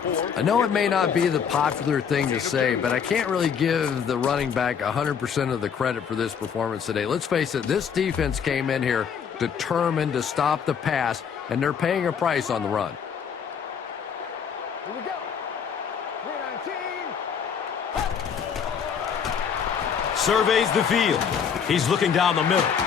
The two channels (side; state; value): right; quieter; 7.2 dB